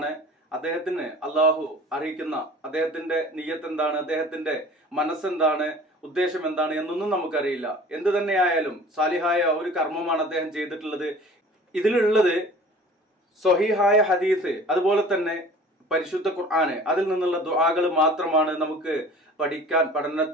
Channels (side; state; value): both; normal; correlation 0.45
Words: അദ്ദേഹത്തിന് അള്ളാഹു അറിയിക്കുന്ന അദ്ദേഹത്തിന്റെ നിയ്യത്ത് എന്താണ്, അദ്ദേഹത്തിന്റെ മനസ്സെന്താണ്, ഉദ്ദേശം എന്താണ് എന്നൊന്നും നമുക്കറിയില്ല. എന്ത് തന്നെയായാലും സാലിഹായ ഒരു കർമ്മമാണ് അദ്ദേഹം ചെയ്തിട്ടുള്ളത്. ഇതിലുള്ളത് സ്വഹീഹായ ഹദീസ്, അതുപോലെ തന്നെ പരിശുദ്ധ ഖുർആന്, അതിൽ നിന്നുള്ള ദുആകൾ മാത്രമാണ്. നമുക്ക്